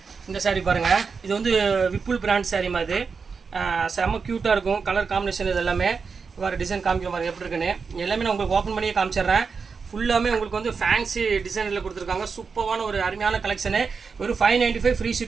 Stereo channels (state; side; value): quieter; left; 5.3 dB